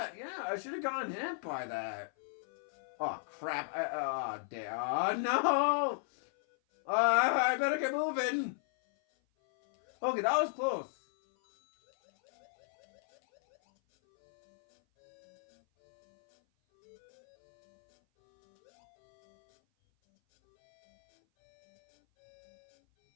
yeah, I should have gotten hit by that. Oh crap! No! I better get moving. Okay, that was close.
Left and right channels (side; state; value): right; silent; 54 dB below the other